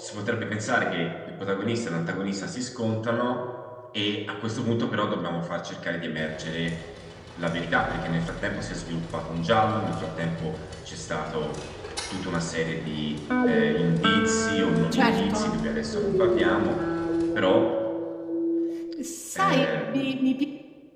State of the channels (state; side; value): identical; both; correlation 1.00